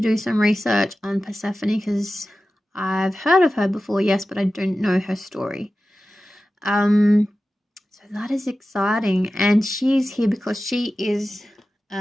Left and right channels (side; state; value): both; normal; correlation 0.94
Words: some research on Persephone because I've heard of her before, yes, but I don't know her story. So that is exciting, and she's here because she is